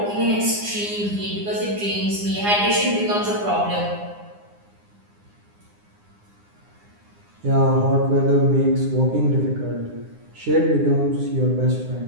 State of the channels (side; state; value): left; late; 9.8 ms